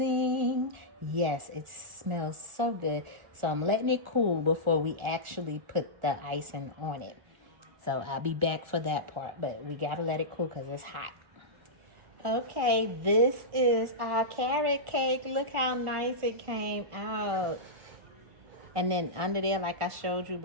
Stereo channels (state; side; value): late; left; 1.4 ms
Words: Yes, it smells so good. So I'm letting it cool before we actually put the icing on it. So I'll be back for that part, but we got to let it cool because it's hot. Okay, this is our carrot cake. Look how nice it came out. And then under there, like I showed you